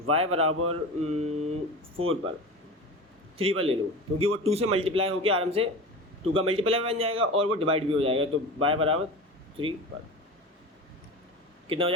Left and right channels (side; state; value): both; normal; correlation 0.30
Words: y बराबर 4 पर, 3 पर ले लो, क्योंकि वो 2 से मल्टीप्लाई होकर आराम से 2 का मल्टीप्लाई बन जाएगा और वो डिवाइड भी हो जाएगा। तो y बराबर 3 पर कितना हो